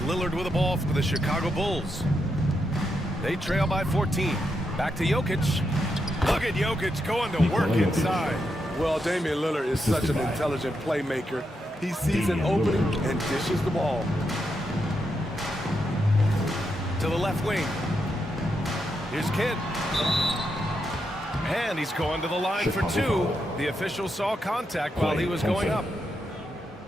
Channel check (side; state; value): both; normal; correlation 0.83